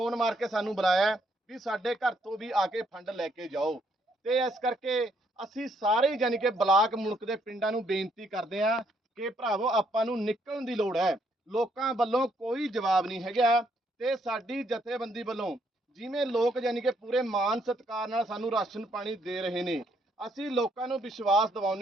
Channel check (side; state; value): both; normal; correlation 0.71